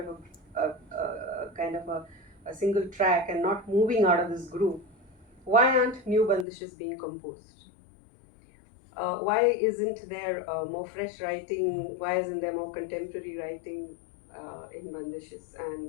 of a single track and not moving out of this groove, why aren't new bandishes being composed? Why isn't there more fresh writing? Why isn't there more contemporary writing in bandishes?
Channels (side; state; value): right; drops out; at 6.5 s